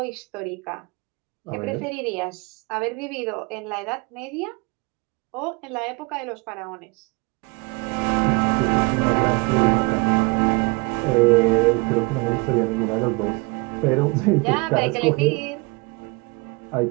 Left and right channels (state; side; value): quieter; left; 27.8 dB